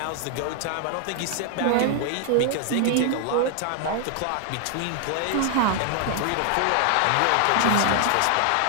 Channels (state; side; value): different; both; correlation 0.00